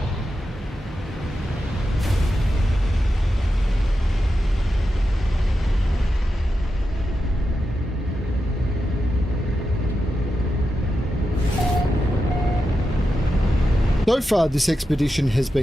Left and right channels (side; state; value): both; normal; correlation 0.89